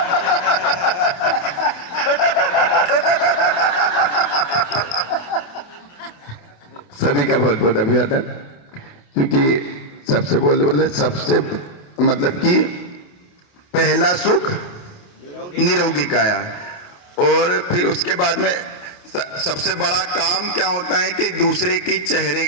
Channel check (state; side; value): late; right; 28 ms